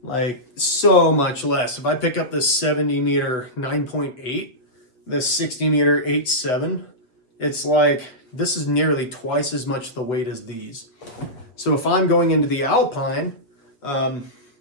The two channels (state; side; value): late; right; 8.0 ms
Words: like so much less. If I pick up this 70 meter 9.8, this 60 meter 8.7, it's like this is nearly twice as much the weight as these. So if I'm going into the alpine,